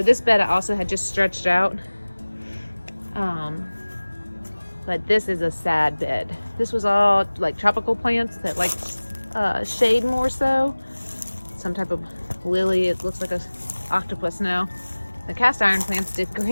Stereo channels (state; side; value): inverted; both; correlation -1.00